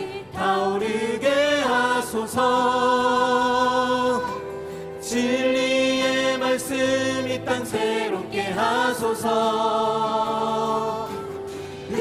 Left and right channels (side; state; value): both; identical; correlation 1.00